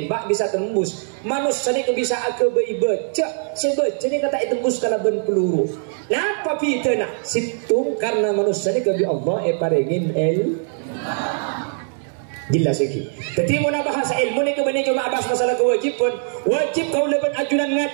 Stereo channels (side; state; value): left; silent; 65 dB below the other